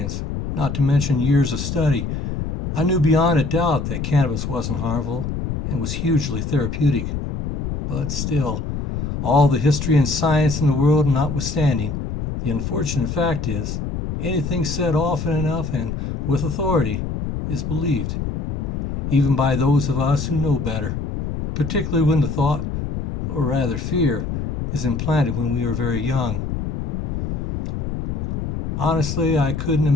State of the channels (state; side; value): noise; left; rumble, 3 dB below the sound